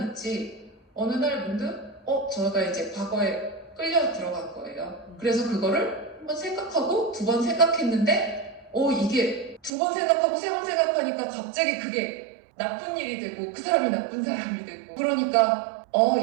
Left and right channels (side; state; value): left; drops out; at 9.7 s